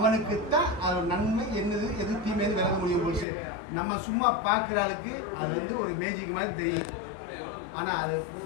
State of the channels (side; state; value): right; drops out; at 3.2 s